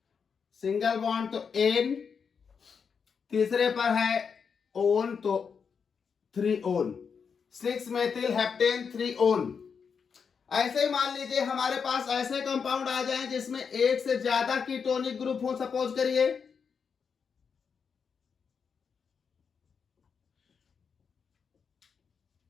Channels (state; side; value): quieter; right; 6.2 dB